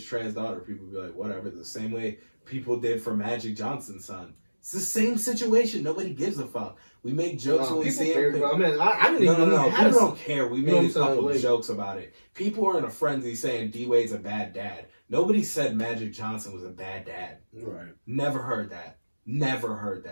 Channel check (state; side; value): inverted; both; correlation -1.00